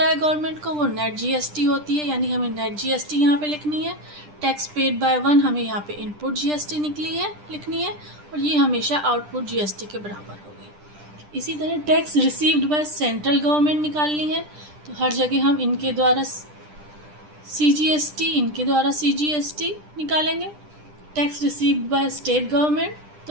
है गवर्नमेंट को वो नेट जीएसटी होती है, यानी हमें नेट जीएसटी यहाँ पे लिखनी है। टैक्स पेड बाय 1 हमें यहाँ पे इनपुट जीएसटी लिखनी है, और ये हमेशा आउटपुट जीएसटी के बराबर होगी। इसी तरह tax received by central government निकालनी है, तो हर जगह हम इनके द्वारा सीजीएसटी, इनके द्वारा सीजीएसटी निकालेंगे। Tax received by state government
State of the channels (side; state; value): left; late; 10 ms